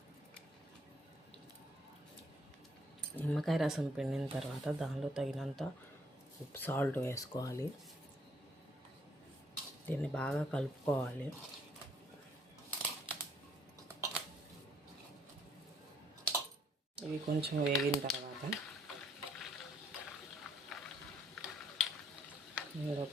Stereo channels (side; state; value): both; normal; correlation 0.66